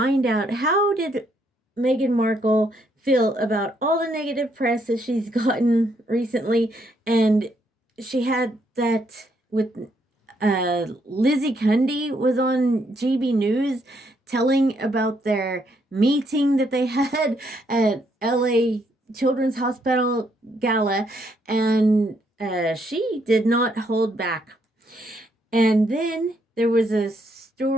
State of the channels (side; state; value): both; normal; correlation 0.73